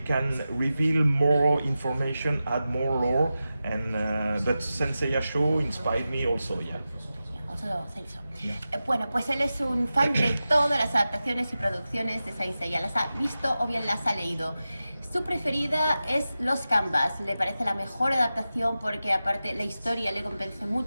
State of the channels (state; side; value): inverted; both; correlation -0.93